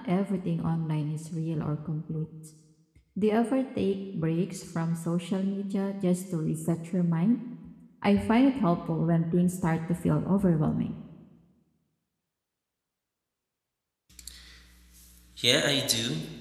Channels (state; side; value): identical; both; correlation 1.00